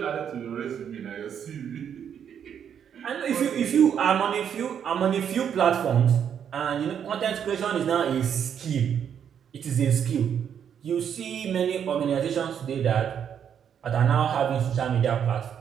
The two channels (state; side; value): quieter; left; 8.4 dB